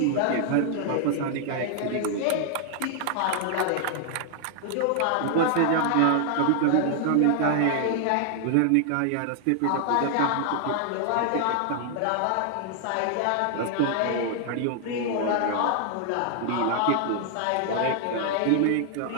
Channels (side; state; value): both; different; correlation 0.00